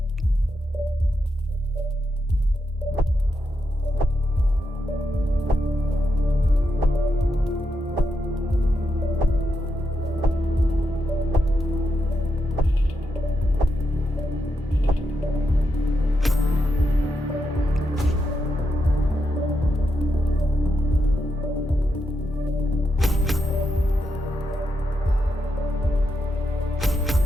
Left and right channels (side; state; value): both; normal; correlation 0.84